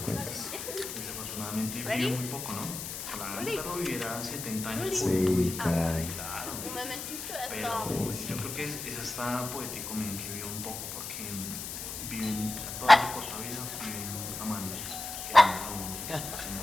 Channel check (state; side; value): noise; left; hiss, 7 dB below the sound